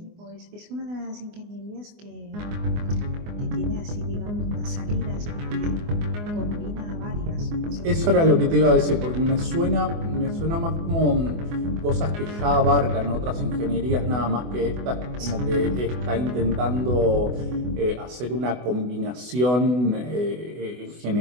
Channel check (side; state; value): left; late; 24 ms